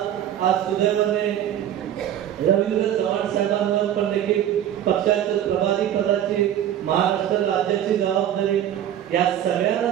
आज सुदैवाने रवींद्र चव्हाण साहेबांवर पण देखील पक्षाच्या प्रभारी पदाची, महाराष्ट्र राज्याची जबाबदारी, या सगळ्यांना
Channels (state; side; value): quieter; left; 10.9 dB